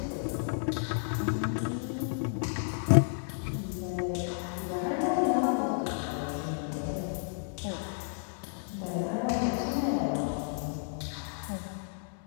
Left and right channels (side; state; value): right; silent; digital silence